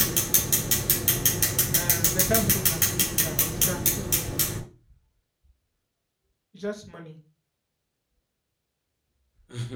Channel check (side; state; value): both; identical; correlation 1.00